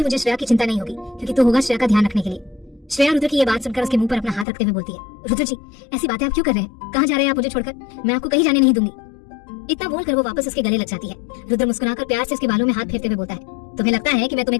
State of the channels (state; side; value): drops out; right; at 4.5 s